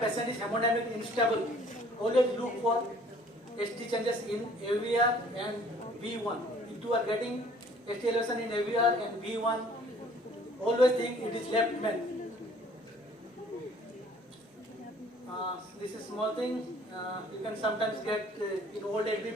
patient is hemodynamically unstable, always look for ST changes in AVR and V1. If you are getting ST elevation in AVR and V1, always think it is left main. This is small thing. You can sometimes get in old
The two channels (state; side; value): normal; both; correlation 0.55